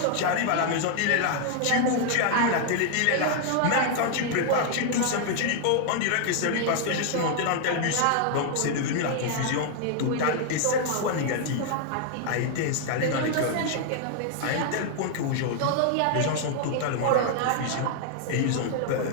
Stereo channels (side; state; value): both; different; correlation 0.00